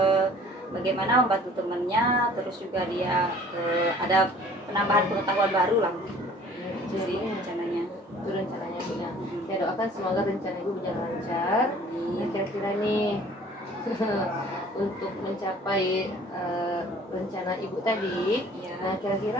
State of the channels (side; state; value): both; normal; correlation 0.51